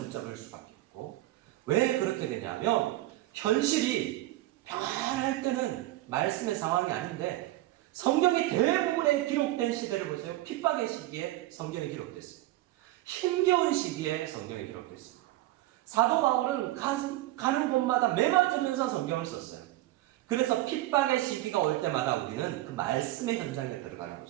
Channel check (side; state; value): left; quieter; 16.6 dB